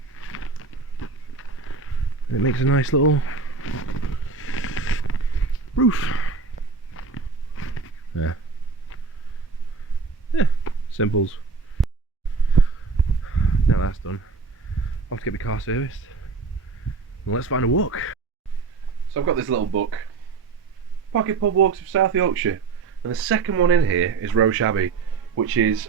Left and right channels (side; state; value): left; quieter; 4.6 dB